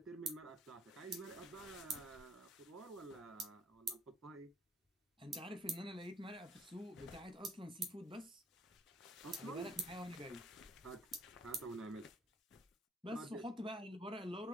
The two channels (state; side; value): normal; both; correlation 0.63